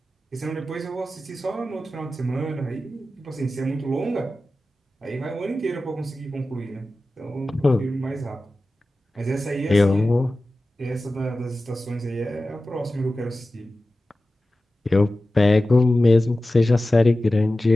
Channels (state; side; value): normal; both; correlation 0.95